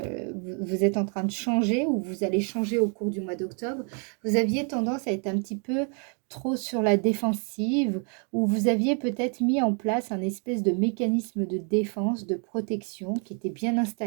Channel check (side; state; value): left; quieter; 39.4 dB